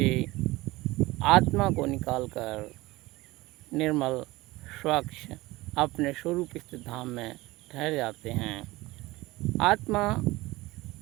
आत्मा को निकालकर निर्मल स्वच्छ अपने स्वरूप स्थित धाम में ठहर जाते हैं। आत्मा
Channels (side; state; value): left; quieter; 20.0 dB